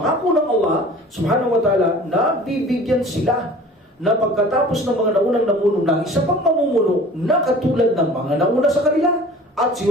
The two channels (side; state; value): both; normal; correlation 0.44